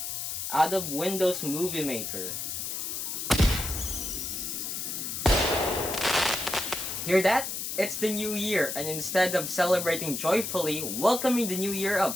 out of Windows Movie Maker. Hear that? It's the new year, and instead of celebrating joyfully, welcoming the new year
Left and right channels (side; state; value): left; noise; hiss, 4 dB below the sound